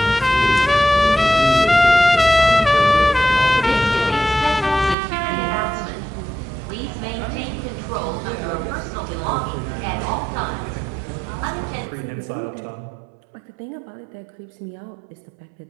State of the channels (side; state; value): left; drops out; at 5.0 s